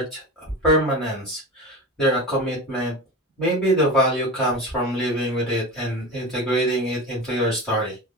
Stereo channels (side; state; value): both; normal; correlation 0.28